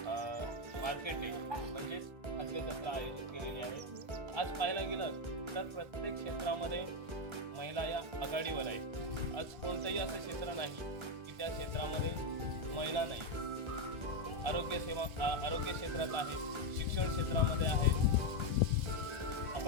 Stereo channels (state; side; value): late; left; 1.3 ms